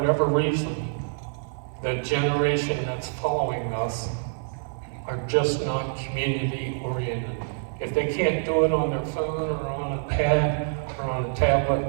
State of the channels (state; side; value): silent; left; 57 dB below the other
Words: reason, the generation that's following us are just not community oriented. If they can't do it on their phone or on a pad or on a